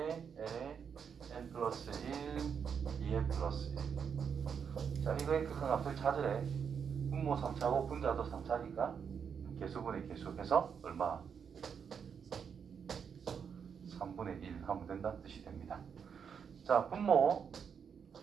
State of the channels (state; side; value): quieter; left; 7.0 dB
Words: n에 n 플러스 1, 2n 플러스 1. 자, 이거의 극한값을 찾으래. 분모 3차고 분자도 3차니까 개수분의 개수해서 얼마? 3분의 1 하면 된다는 뜻이 됩니다. 자, 분모